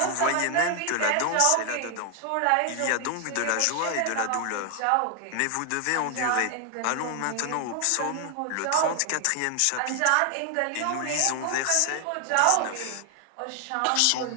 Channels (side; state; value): both; different; correlation 0.00